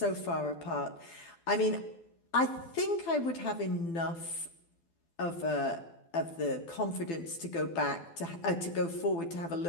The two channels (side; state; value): right; late; 12 ms